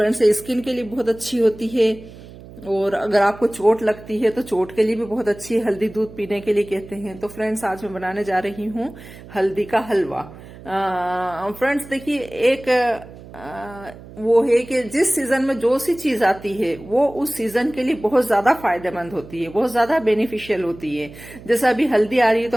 ये स्किन के लिए बहुत अच्छी होती है। और अगर आपको चोट लगती है तो चोट के लिए भी बहुत अच्छी है, हल्दी दूध पीने के लिए कहते हैं। तो फ्रेंड्स, आज मैं बनाने जा रही हूँ हल्दी का हलवा। फ्रेंड्स देखिए, एक वो है कि जिस सीजन में जो सी चीज आती है वो उस सीजन के लिए बहुत ज्यादा फायदेमंद होती है, बहुत ज्यादा बेनिफिशियल होती है। जैसे अभी हल्दी आ रही है,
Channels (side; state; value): right; noise; hum, 18 dB below the sound